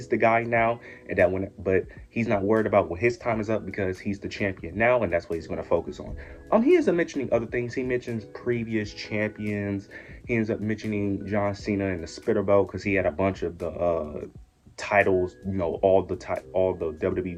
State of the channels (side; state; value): both; identical; correlation 1.00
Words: the guy now and that but he's not worried about when his time is up because he's the champion now and that's what he's going to focus on. He ends up mentioning other things. He mentions previous champions. He ends up mentioning John Cena and the Spitter Belt because he had a bunch of the titles, all the WWE